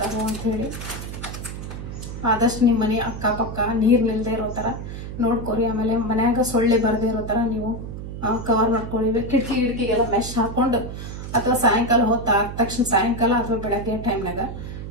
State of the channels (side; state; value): right; noise; hum, 8 dB below the sound